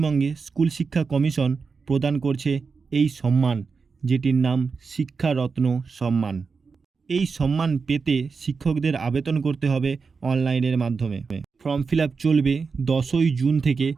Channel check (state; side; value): quieter; left; 5.0 dB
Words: স্কুল শিক্ষা কমিশন প্রদান করছে এই সম্মান, যেটির নাম শিক্ষারত্ন সম্মান। এই সম্মান পেতে শিক্ষকদের আবেদন করতে হবে অনলাইনের মাধ্যমে। ফর্ম ফিল আপ চলবে 10ই জুন থেকে